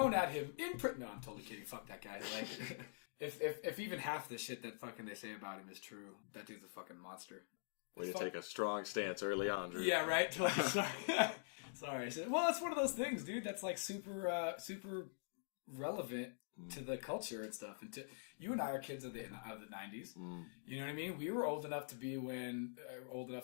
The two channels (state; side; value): silent; right; digital silence